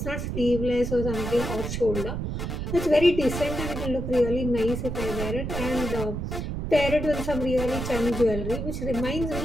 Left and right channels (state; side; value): noise; right; rumble, 4 dB below the sound